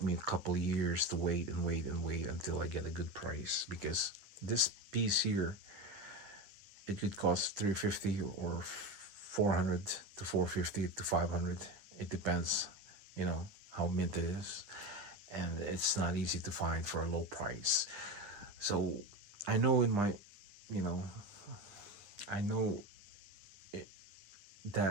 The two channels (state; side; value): late; left; 9.7 ms